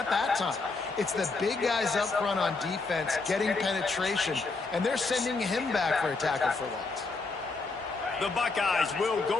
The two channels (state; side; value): quieter; right; 3.9 dB